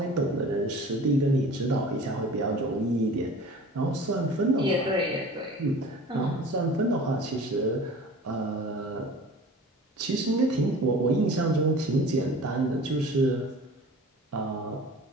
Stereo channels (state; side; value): normal; both; correlation 0.41